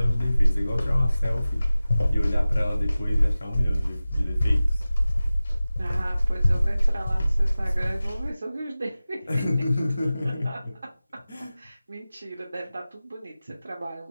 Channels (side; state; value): both; inverted; correlation -0.96